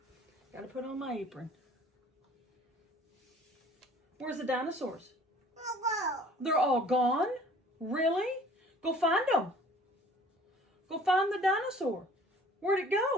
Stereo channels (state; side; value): normal; both; correlation 0.51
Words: Gotta put on my apron. Where's the dinosaurs? They're all gone? Really? Go find them. Go find the dinosaur. Where'd it